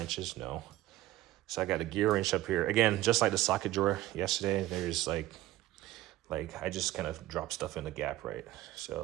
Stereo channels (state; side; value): quieter; left; 16.1 dB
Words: No. So I got a gear wrench up here. Again, just like the socket drawer yesterday, there's like I just kind of drop stuff in the gap, right?